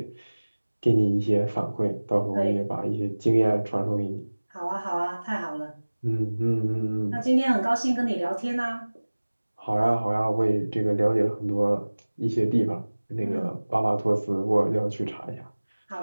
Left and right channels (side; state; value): both; inverted; correlation -1.00